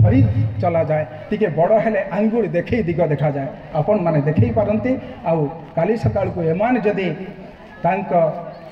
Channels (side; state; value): both; identical; correlation 1.00